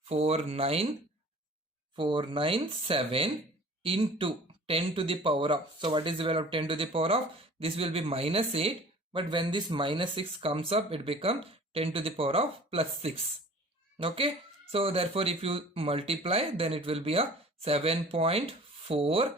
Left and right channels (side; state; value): both; normal; correlation 0.46